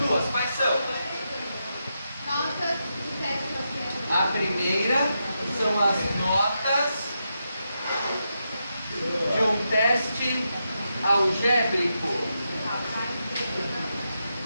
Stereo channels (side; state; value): both; inverted; correlation -0.85